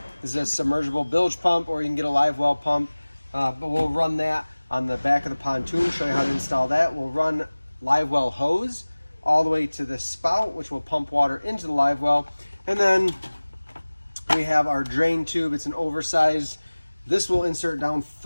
This is a submergible bilge pump, or you can get a Livewell pump, but we'll run that on the back of the pontoon, show you how to install that. We'll run Livewell hose all the way to the spout, which will pump water into the Livewell, and then we have our drain tube. It's an oversized. This will insert down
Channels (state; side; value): inverted; both; correlation -1.00